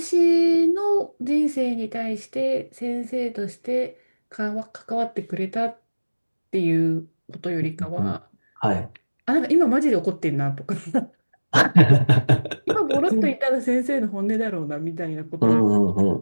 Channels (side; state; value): both; inverted; correlation -1.00